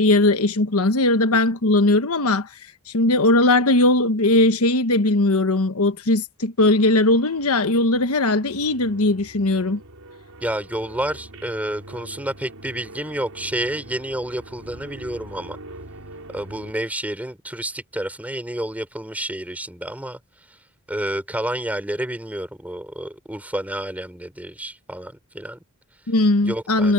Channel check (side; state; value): both; normal; correlation 0.20